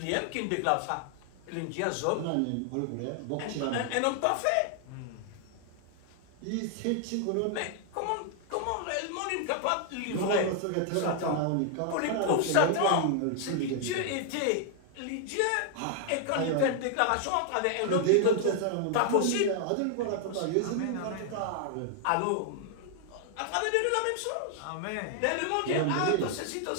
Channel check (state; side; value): different; both; correlation 0.00